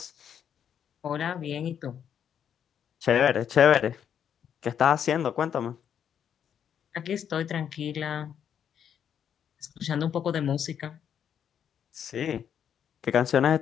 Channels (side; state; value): right; quieter; 8.6 dB